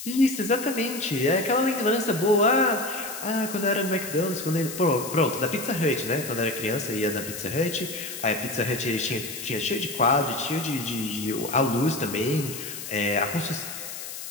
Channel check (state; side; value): noise; left; hiss, 9 dB below the sound